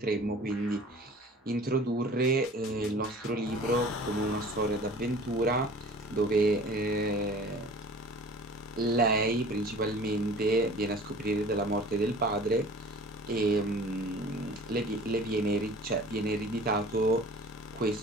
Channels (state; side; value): normal; both; correlation 0.45